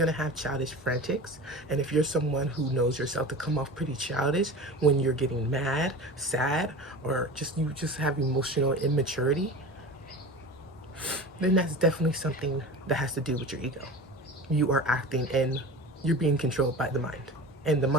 to have childish frantics. And if you're someone who knows yourself to come off pretty childish when you're getting mad, sad, or you just have emotional immaturity, then that's definitely something that has to do with your ego. You are acting and you're being controlled by the mind, and the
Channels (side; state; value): both; normal; correlation 0.34